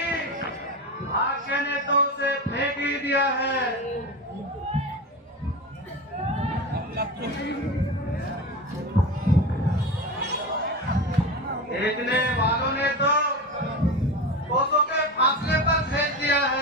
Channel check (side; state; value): both; normal; correlation 0.24